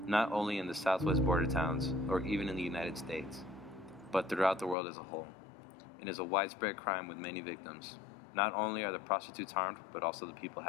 not only in the southwest border towns or even in the United States, but throughout the world as a whole. It is a widespread crime with many victims. Not only are the prostitutes harmed, but also the people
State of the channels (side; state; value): right; drops out; at 4.8 s